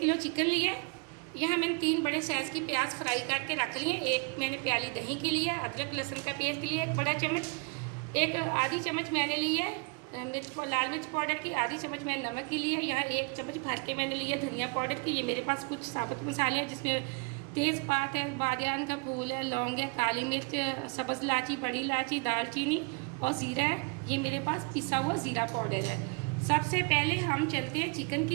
चिकन लिया है। यहाँ मैंने 3 बड़े साइज़ की प्याज फ्राई करके रख ली है। एक मैंने प्याली दही की ली है, अदरक लहसुन का पेस्ट लिया एक बड़ा चम्मच, एक आधी चम्मच मैंने ली है लाल मिर्च पाउडर की, आधी चम्मच मैंने नमक की ली है। यहाँ 1 चम्मच भर के मैंने लिया धनिया पाउडर की। ये मेरे पास कुछ साबुत मसाले हैं, जिसमें तेज़पात है, बादियान का फूल है, लौंग है, काली मिर्च, सब्ज़ इलायची, बड़ी इलायची, दालचीनी और ज़ीरा है। ये मेरे पास पिसा हुआ ज़ीरा पाउडर है। सबसे पहले हम चलते हैं चिकन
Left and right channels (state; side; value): quieter; left; 33.1 dB